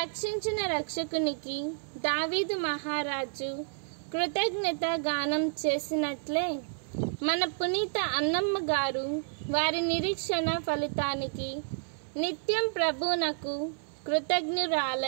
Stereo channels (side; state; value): left; silent; 58 dB below the other